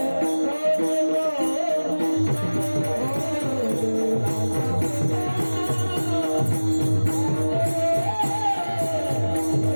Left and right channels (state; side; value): inverted; both; correlation -1.00